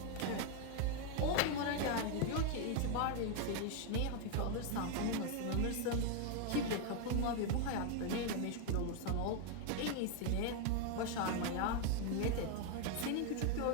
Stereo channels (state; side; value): different; both; correlation 0.00